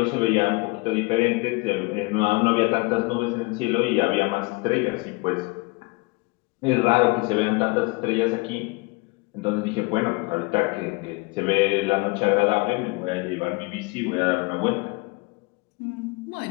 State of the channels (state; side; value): quieter; right; 26.4 dB